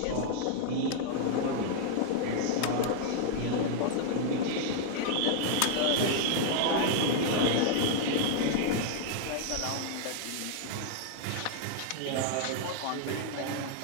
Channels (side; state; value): both; different; correlation -0.01